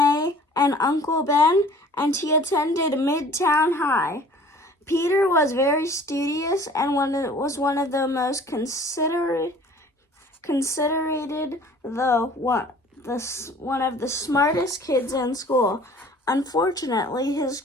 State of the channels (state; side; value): normal; both; correlation 0.49